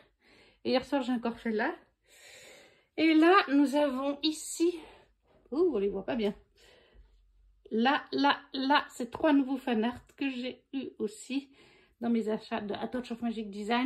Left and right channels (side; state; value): both; identical; correlation 1.00